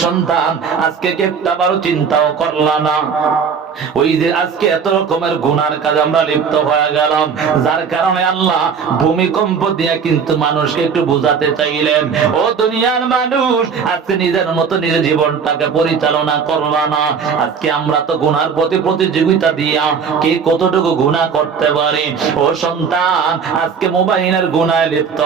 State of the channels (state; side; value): quieter; left; 6.3 dB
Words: সন্তান, আজকে কি একটাবারও চিন্তাও করলা না? ওই যে আজকে এত রকমের গুনার কাজ আমরা লিপ্ত হয়ে গেলাম, যার কারণে আল্লাহ ভূমিকম্প দিয়ে কিন্তু মানুষকে একটু বুঝাতে চাইলেন, ও দুনিয়ার মানুষ, আজকে নিজের মতো নিজের জীবনটাকে পরিচালনা করবা না। আজকে আমরা তো গুনার প্রতি প্রতিযোগিতা দিয়া কে কতটুকু গুনাহ করতে পারে। ও সন্তান, আজকে মোবাইলের গুনায় লিপ্ত